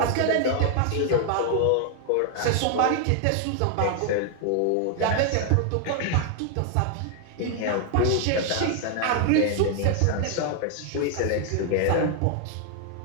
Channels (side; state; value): both; different; correlation 0.00